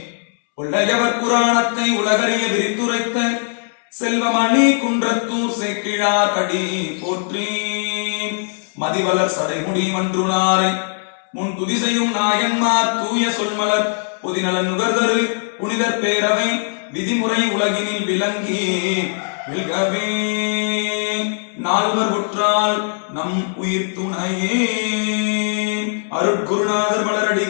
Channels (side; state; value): right; silent; digital silence